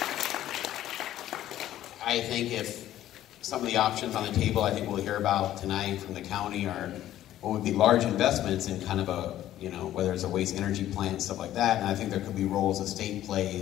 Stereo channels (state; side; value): quieter; right; 12.9 dB